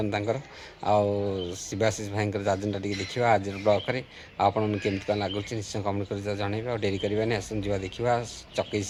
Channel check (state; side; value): identical; both; correlation 1.00